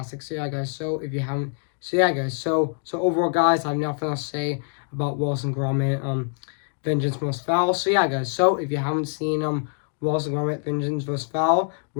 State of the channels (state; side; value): silent; right; 62 dB below the other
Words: So yeah, guys, so if you haven't. So yeah, guys, so overall, guys, I have nothing else to say about Wallace and Gromit, Vengeance Most Foul. So yeah, guys, so if you haven't seen Wallace and Gromit, Vengeance Most Foul,